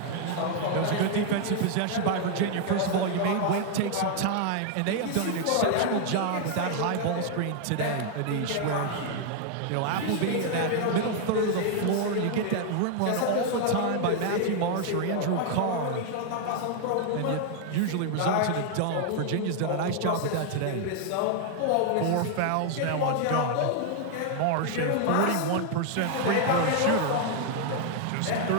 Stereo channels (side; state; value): both; different; correlation 0.00